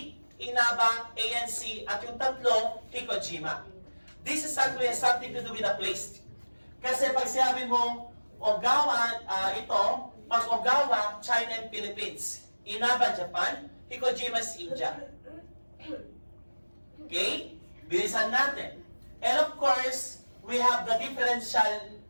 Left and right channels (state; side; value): inverted; both; correlation -1.00